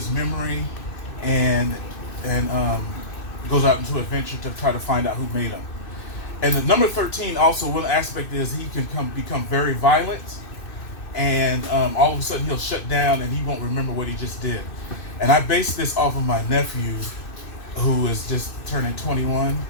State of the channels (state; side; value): late; right; 2.6 ms